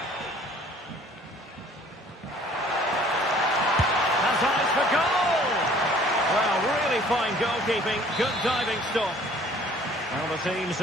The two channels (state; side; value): normal; both; correlation 0.54